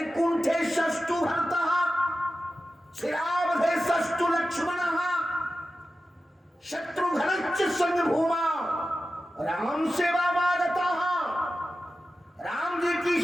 षष्टु भरतः, श्रीरावधे षष्टु लक्ष्मणः, शत्रुघ्नश्च संभूमा राम सेवा मागतः। राम जी की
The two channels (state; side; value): normal; both; correlation 0.93